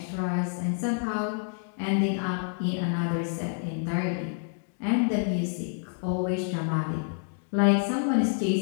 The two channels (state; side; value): silent; right; 59 dB below the other